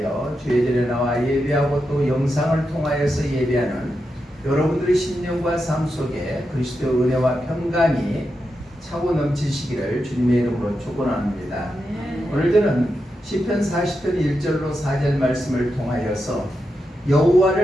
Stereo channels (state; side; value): normal; both; correlation 0.87